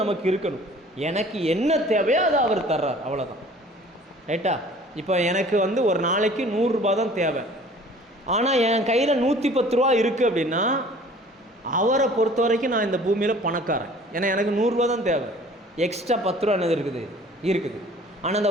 நமக்கு இருக்கணும். எனக்கு என்ன தேவையோ அதை அவர் தர்றார், அவ்வளோதான். ரைட்டா? இப்போ எனக்கு ஒரு நாளைக்கு 100 ரூபா தான் தேவை, ஆனால் என் கையில் 110 ரூபா இருக்குது அப்படின்னா அவரை பொறுத்த வரைக்கும் நான் இந்த பூமியில் பணக்காரன். ஏன்னா எனக்கு 100 ரூபா தான் தேவை, எக்ஸ்ட்ரா 10 ரூபா என்னது இருக்குது. ஆனால்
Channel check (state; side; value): normal; both; correlation 0.49